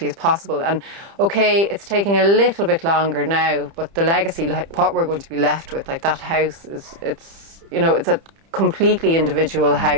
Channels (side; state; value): left; late; 30 ms